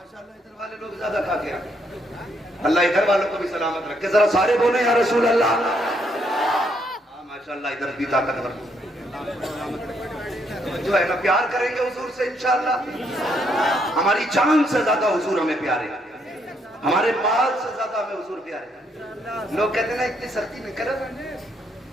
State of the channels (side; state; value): both; normal; correlation 0.73